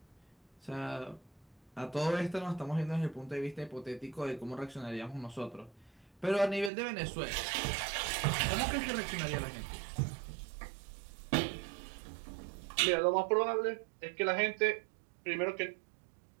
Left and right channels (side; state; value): left; drops out; at 6.7 s